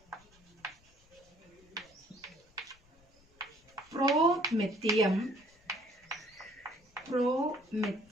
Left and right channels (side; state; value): left; noise; rumble, 30 dB below the sound